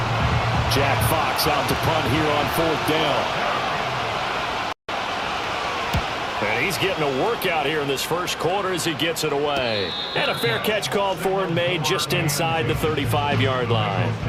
Jack Fox out to punt here on 4th down. And he's getting a workout here in this first quarter as he gets it away. And a fair catch called for and made just inside the 35-yard line.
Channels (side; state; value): both; identical; correlation 1.00